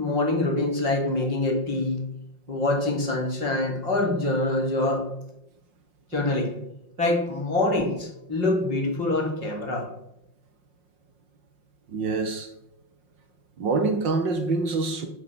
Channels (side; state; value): left; late; 5.6 ms